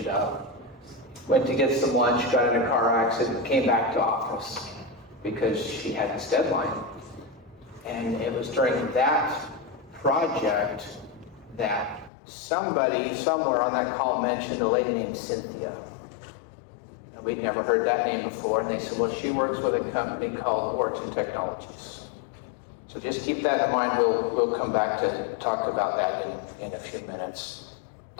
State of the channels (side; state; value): right; drops out; at 12.1 s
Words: up. Went to get some lunch, got in a car accident, came back to office because she had this deadline. And it was during that project that somebody somewhere on that call mentioned a lady named Cynthia. And we'd never heard that name before, and they said, well, she works with a company called Origen Technologies. So just keep that in mind. We'll come back to talk about that in a few minutes.